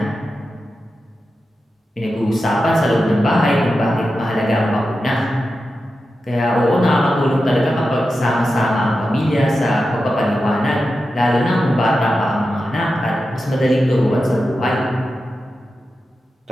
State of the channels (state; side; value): normal; both; correlation 0.91